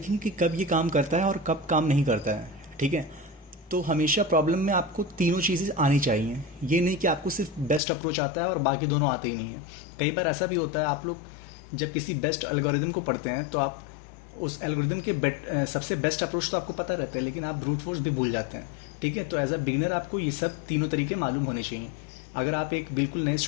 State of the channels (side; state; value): right; drops out; at 7.8 s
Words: कि कब ये काम करता है और कब काम नहीं करता है। ठीक है, तो हमेशा प्रॉब्लम में आपको तीनों चीज़ें आनी चाहिए। ये नहीं कि आपको सिर्फ बेस्ट अप्रोच आता है और बाकी दोनों आते ही नहीं है। कई बार ऐसा भी होता है, आप लोग जब किसी बेस्ट एल्गोरिदम को पढ़ते हैं तो आप उस एल्गोरिदम के सबसे बेस्ट अप्रोच तो आपको पता रहता है, लेकिन आप ब्रूट फोर्स भी भूल जाते हैं। ठीक है, तो एज अ बिगिनर आपको ये सब तीनों तरीके मालूम होने चाहिए। अगर आप एक बिल्कुल नए